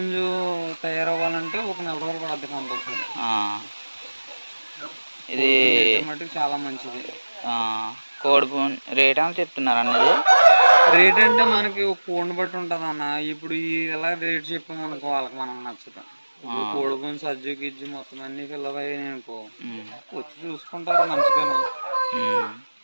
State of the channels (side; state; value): both; inverted; correlation -1.00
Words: తయారవ్వాలంటే ఒక 4 రోజులు పడుతుంది కంపల్సరీ. ఇది మటుకు చాలా మంచిది. కోడిపుంజు రేట్ అని చెప్తున్నారు అన్నది. రేట్ అంటే మనకి కోడిని బట్టి ఉంటుంది అన్న. ఇప్పుడు ఎలా రేట్ చెప్పామనుకో వాళ్ళకి మనం నచ్చుతాం. కోడిపుంజు సజ్జు గిజ్జు మొత్తం అన్ని పిల్లవయ్యాయి అనుకో, వచ్చి చూసుకుంటారు మంచిగా.